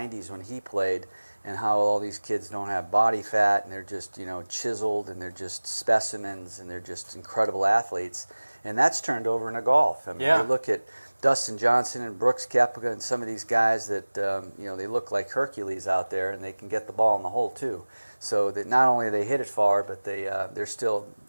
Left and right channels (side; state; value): both; inverted; correlation -1.00